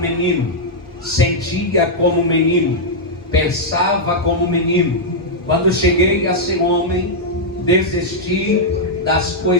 sentia como menino, pensava como menino. Quando cheguei a ser homem, desisti das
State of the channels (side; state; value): both; normal; correlation -0.05